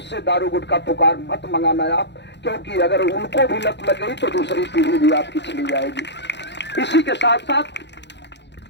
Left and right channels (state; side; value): late; right; 0.51 ms